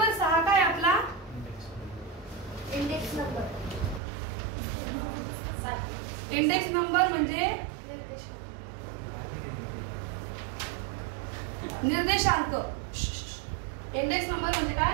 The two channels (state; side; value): drops out; left; at 4.0 s